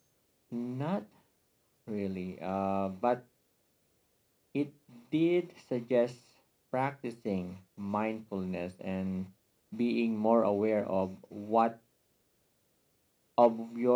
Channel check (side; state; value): both; identical; correlation 1.00